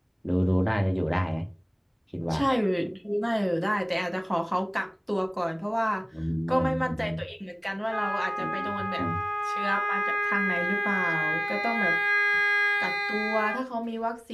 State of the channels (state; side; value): identical; both; correlation 1.00